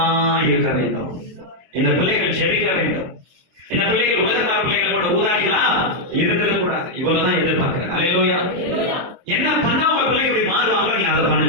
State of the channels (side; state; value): left; late; 23 ms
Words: இருக்க வேண்டும். இந்த பிள்ளைகள் ஜெபிக்க வேண்டும். இந்த பிள்ளைகள் உலகத்தார் பிள்ளைகள் கூட ஊதாரிகளா இருக்கிறது கூடாது. இவ்வளவுதான் எதிர்பார்க்கிறேன். அல்லேலூயா. என்ன பண்ணா உங்க பிள்ளைங்க இப்படி மாறுவாங்க, நீங்க அதை